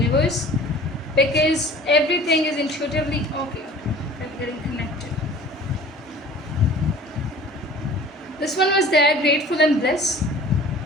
because everything is intuitively okay. I'm getting connected. This one was there, grateful and bliss.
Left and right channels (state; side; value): normal; both; correlation 0.45